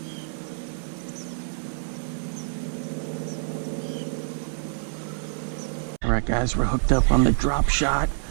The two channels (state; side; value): silent; left; 60 dB below the other